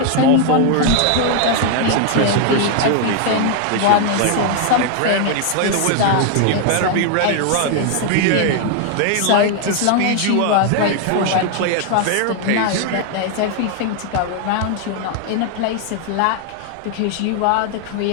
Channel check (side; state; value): both; different; correlation 0.00